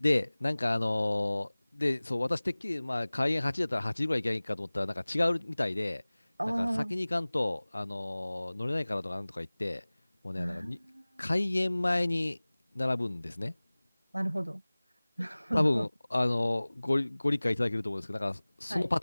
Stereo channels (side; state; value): both; inverted; correlation -1.00